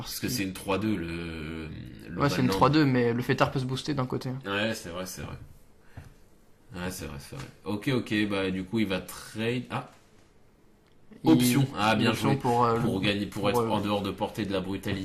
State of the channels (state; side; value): identical; both; correlation 1.00